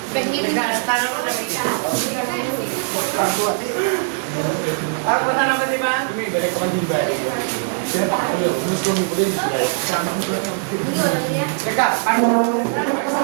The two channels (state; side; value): silent; left; digital silence